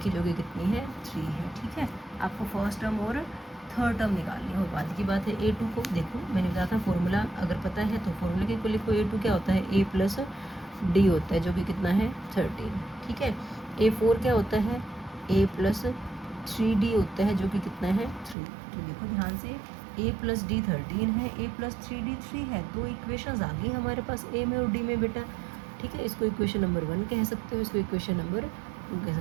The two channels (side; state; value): left; drops out; at 18.4 s